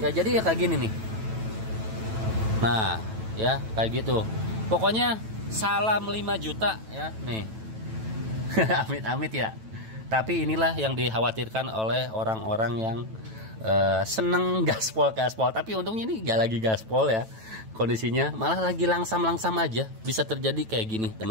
jadi ya kayak gini nih. Nah, ya kayak gitu. Pokoknya salam 5 juta ya, nih. Amit-amit ya. Tapi inilah yang dikhawatirkan oleh orang-orang yang seneng gaspol. Tapi untungnya ini gak lagi gaspol ya. Kondisinya malah lagi langsam-langsam aja. Bisa terjadi kayak gini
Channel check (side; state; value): left; late; 9.1 ms